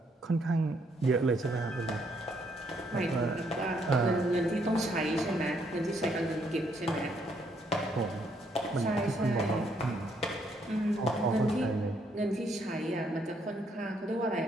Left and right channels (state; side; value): normal; both; correlation 0.71